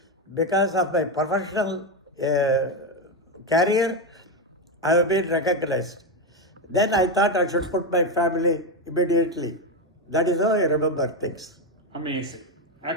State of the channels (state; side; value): normal; both; correlation 0.10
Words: Because of my professional career, I have been recognized. Then I thought I should put my family immediately. That is how I remember things. amazing.